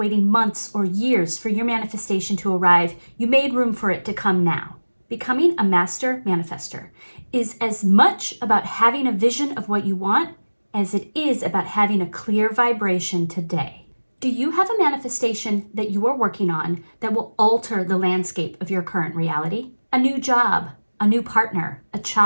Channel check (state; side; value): inverted; both; correlation -1.00